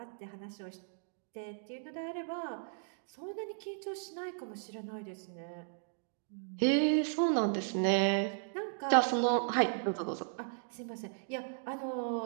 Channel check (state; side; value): silent; left; digital silence